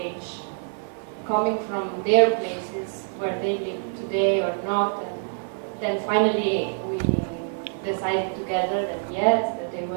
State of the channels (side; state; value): left; silent; digital silence